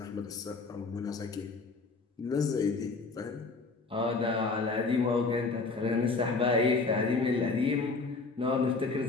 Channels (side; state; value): right; quieter; 4.0 dB